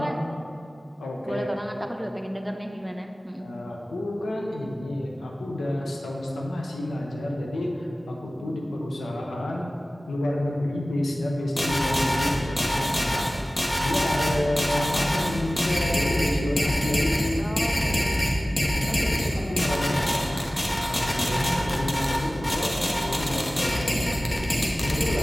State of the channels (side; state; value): both; normal; correlation 0.97